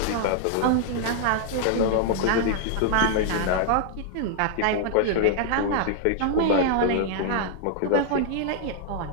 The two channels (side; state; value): both; different; correlation 0.00